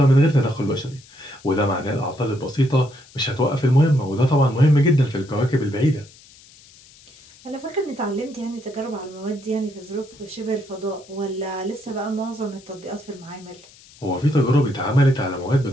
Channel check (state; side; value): noise; left; hiss, 24 dB below the sound